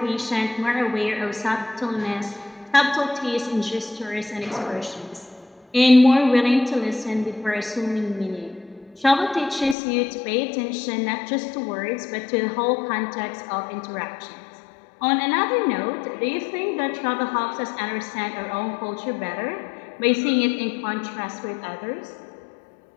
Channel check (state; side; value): drops out; right; at 9.8 s